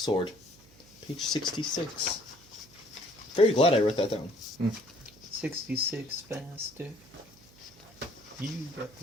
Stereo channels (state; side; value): noise; right; hum, 26 dB below the sound